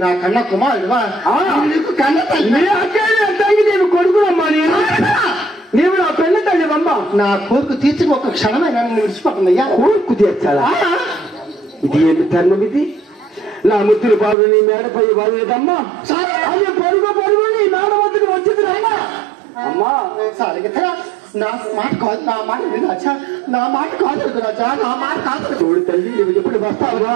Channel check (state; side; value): drops out; left; at 14.4 s